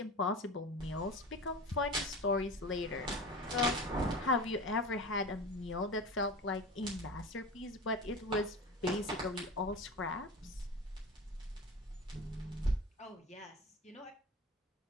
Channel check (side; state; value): both; normal; correlation 0.31